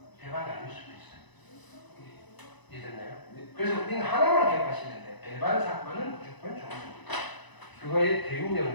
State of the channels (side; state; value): right; late; 1.0 ms